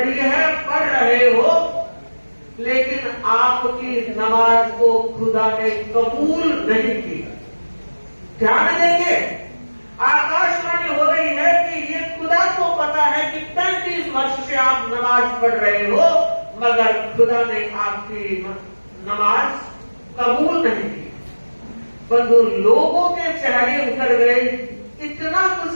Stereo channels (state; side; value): inverted; both; correlation -1.00